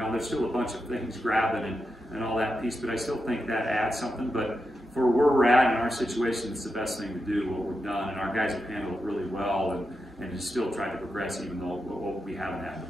there's still a bunch of things grabbing and all that piece, but I still think that adds something. But for where we're at in our situation, it's the best thing to do, what we've done. And our guys have handled it really well and just still tried to progress, even though we haven't had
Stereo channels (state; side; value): normal; both; correlation 0.87